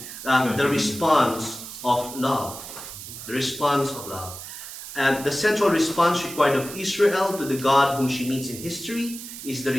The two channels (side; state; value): right; noise; hiss, 11 dB below the sound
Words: the response of love. The response of love. And the central response required of Israel to the God whom she meets in history is the